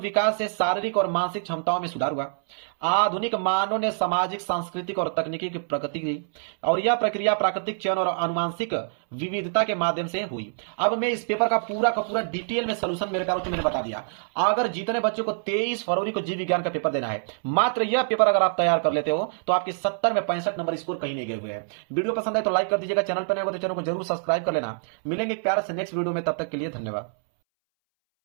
से शारीरिक और मानसिक क्षमताओं में सुधार हुआ। आधुनिक मानव ने सामाजिक, सांस्कृतिक और तकनीकी की प्रगति की और यह प्रक्रिया प्राकृतिक चयन और आनुवंशिक विविधता के माध्यम से हुई। अब मैं इस पेपर का पूरा डिटेल में सलूशन मेरे पास मैंने बता दिया। अगर जितने बच्चों को 23 फरवरी को जीव विज्ञान का पेपर देना है, मात्र यह पेपर अगर आप तैयार कर लेते हो तो आपके 70 में 65 नंबर स्कोर कहीं नहीं गए हुए हैं। वीडियो पसंद है तो लाइक कर दीजिएगा, चैनल पर नए हो तो चैनल को जरूर सब्सक्राइब कर लेना। मिलेंगे प्यारे से नेक्स्ट वीडियो में, तब तक के लिए धन्यवाद।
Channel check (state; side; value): silent; left; 61 dB below the other